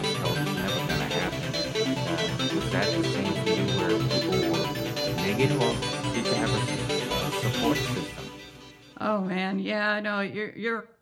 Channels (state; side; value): identical; both; correlation 1.00